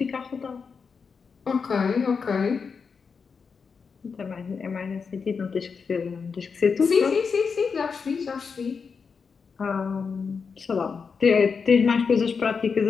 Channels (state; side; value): quieter; right; 5.6 dB